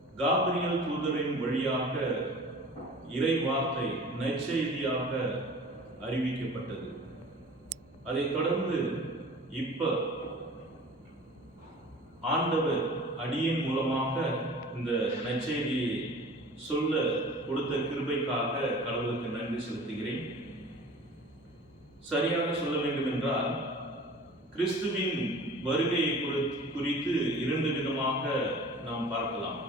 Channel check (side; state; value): both; normal; correlation 0.43